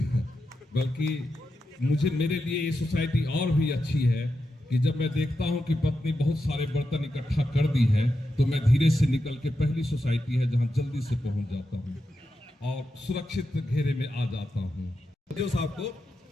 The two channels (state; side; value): normal; both; correlation 0.88